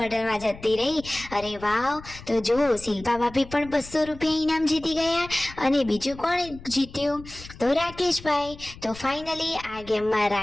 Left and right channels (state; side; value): noise; left; rumble, 17 dB below the sound